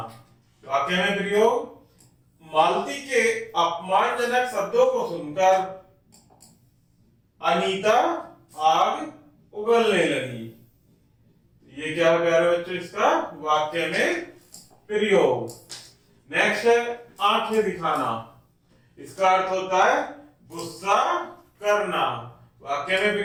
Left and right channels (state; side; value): identical; both; correlation 1.00